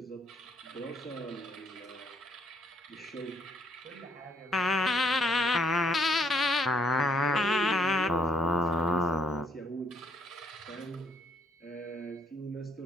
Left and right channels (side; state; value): both; normal; correlation 0.68